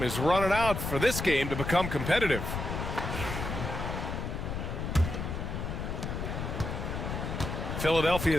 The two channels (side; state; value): left; noise; rumble, 4 dB below the sound